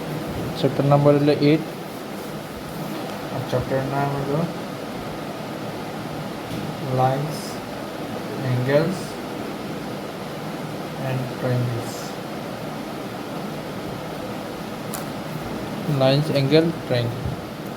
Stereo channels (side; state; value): both; identical; correlation 1.00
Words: চ্যাপ্টার নাম্বার হলো 8 আর চ্যাপ্টারের নাম হলো lines, angles and triangles. Lines, angle, triangle.